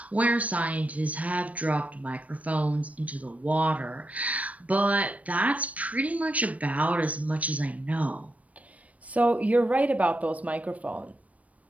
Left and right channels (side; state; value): left; late; 0.068 ms